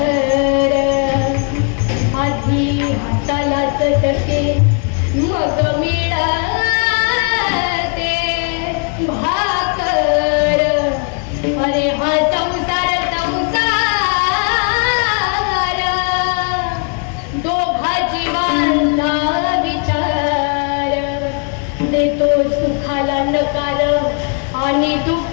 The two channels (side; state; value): right; quieter; 39.5 dB